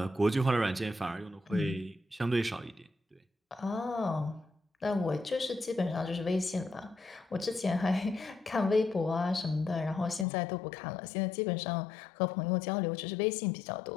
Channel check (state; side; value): drops out; right; at 10.2 s